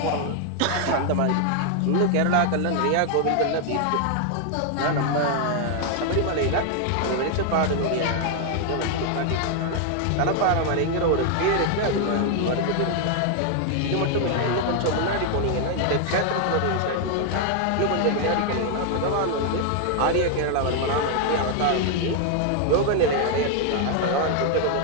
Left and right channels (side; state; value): both; different; correlation 0.00